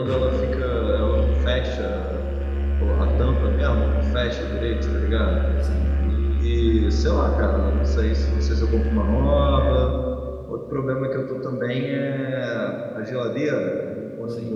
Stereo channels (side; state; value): both; identical; correlation 1.00